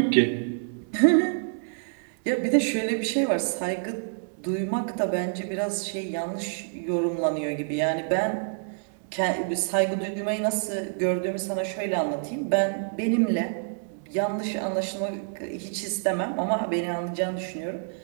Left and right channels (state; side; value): silent; left; digital silence